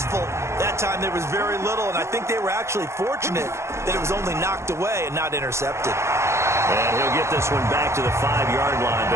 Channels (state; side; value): late; left; 0.13 ms